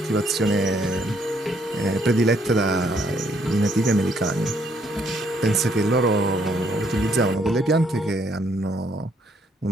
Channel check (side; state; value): both; normal; correlation 0.69